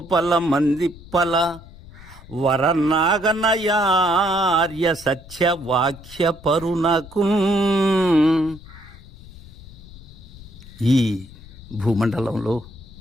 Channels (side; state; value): left; noise; rumble, 18 dB below the sound